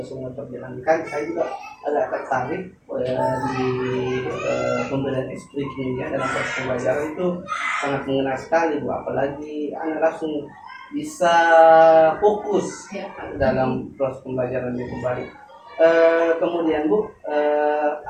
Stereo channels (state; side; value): identical; both; correlation 1.00